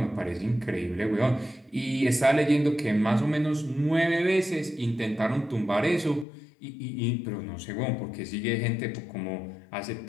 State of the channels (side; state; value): right; drops out; at 6.2 s